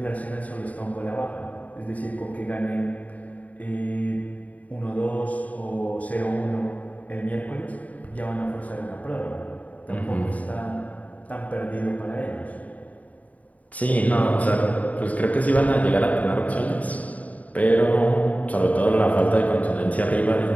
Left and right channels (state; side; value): late; right; 0.071 ms